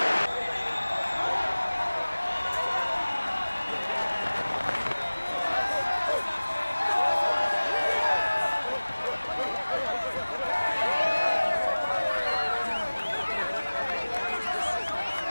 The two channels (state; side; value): inverted; both; correlation -1.00